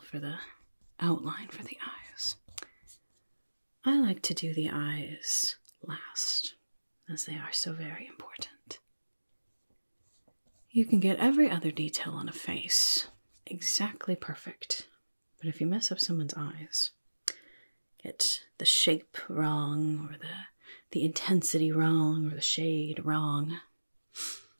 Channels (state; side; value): inverted; both; correlation -1.00